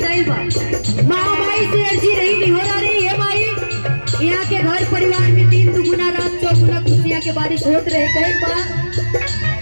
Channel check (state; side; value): inverted; both; correlation -1.00